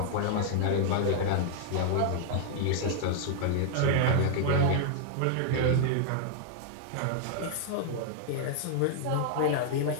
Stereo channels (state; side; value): different; both; correlation -0.01